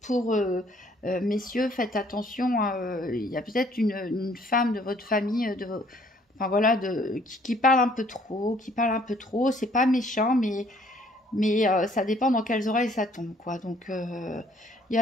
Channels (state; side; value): normal; both; correlation 0.61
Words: pour messieurs, faites attention, il y a peut-être une femme de votre famille, enfin voilà, qui parle un peu trop, c'est pas méchant, mais ça dépend dans quelles oreilles ça tombe, quoi. Donc il y